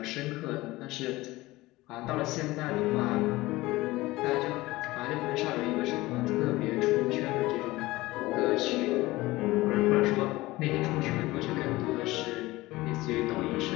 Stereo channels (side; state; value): right; quieter; 19.3 dB